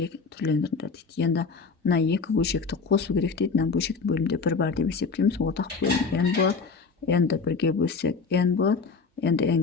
түрлендіріңдер дейді. Енді мына екі бөлшекті қосу керек дейді. Мына бөлшектің бөлімде бір бар деп есептейміз. Ортақ бөлім n болады. n-ді бірге бөлсек n болады. n-ді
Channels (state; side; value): quieter; right; 4.8 dB